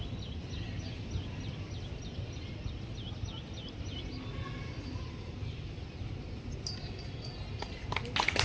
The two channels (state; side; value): identical; both; correlation 1.00